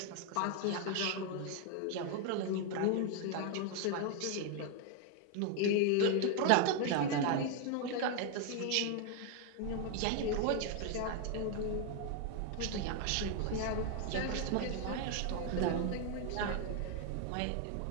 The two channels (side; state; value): both; different; correlation 0.01